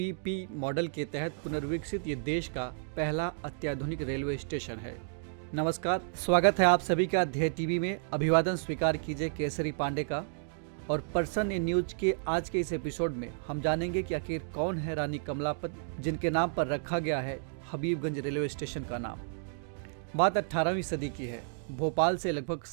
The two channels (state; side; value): silent; left; digital silence